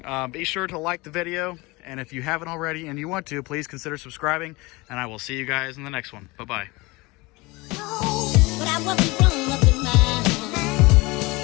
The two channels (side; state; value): right; quieter; 23.6 dB